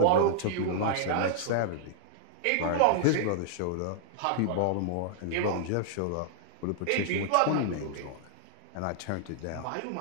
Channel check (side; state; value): both; different; correlation -0.01